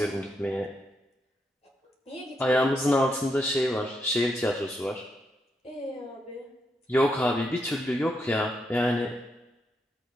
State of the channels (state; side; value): normal; both; correlation 0.81